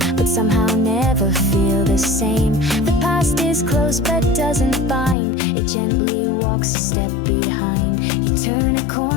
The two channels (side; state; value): right; drops out; at 5.2 s